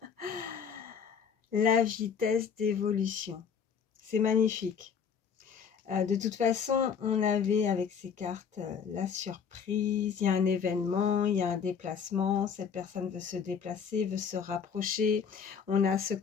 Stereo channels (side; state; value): right; quieter; 6.8 dB